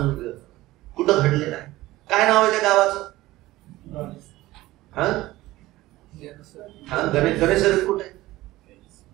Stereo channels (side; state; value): left; quieter; 17.5 dB